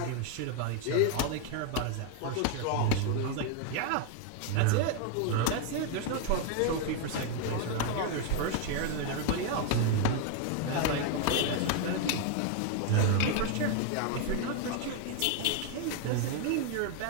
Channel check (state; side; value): different; both; correlation 0.01